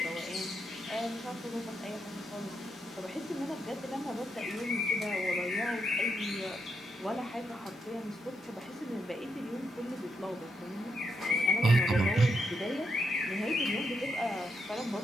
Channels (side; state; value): both; normal; correlation 0.81